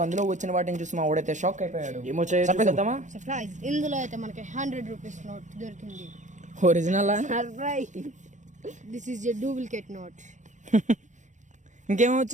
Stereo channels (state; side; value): late; left; 0.35 ms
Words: అందులో వచ్చిన వాటిని చూసి మా వాడైతే షాక్ అయిపోయాడు. ఏమో చేద్దామా? సర్ప్రైజ్! ఇందులో అయితే మనకి 100 రూపీస్ నోట్ దొరికింది. Original surprise. This is a duplicate note. ఇంకేమో